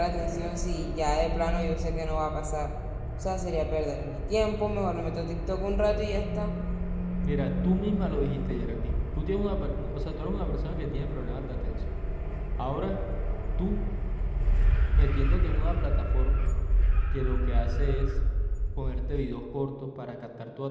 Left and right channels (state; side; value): identical; both; correlation 1.00